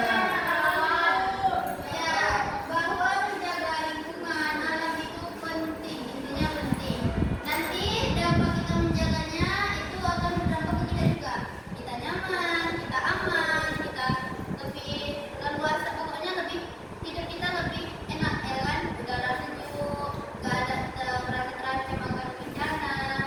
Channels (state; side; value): identical; both; correlation 1.00